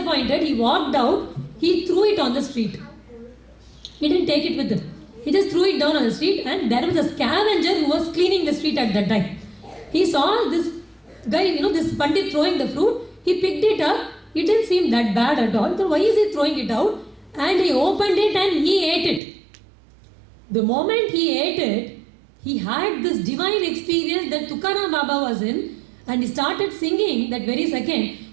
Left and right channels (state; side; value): drops out; left; at 19.2 s